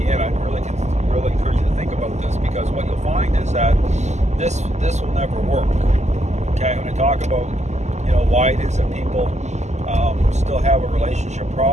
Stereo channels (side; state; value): left; late; 0.33 ms